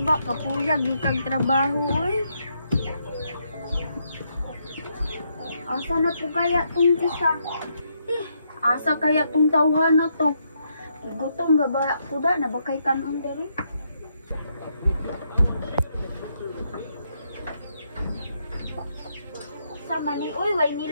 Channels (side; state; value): both; inverted; correlation -0.77